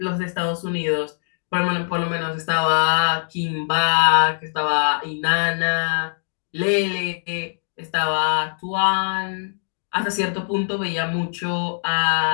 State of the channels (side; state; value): right; silent; digital silence